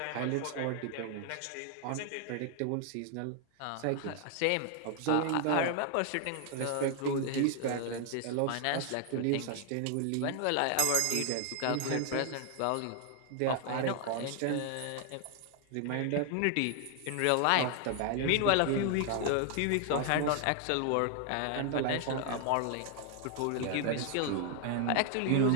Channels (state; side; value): different; both; correlation 0.00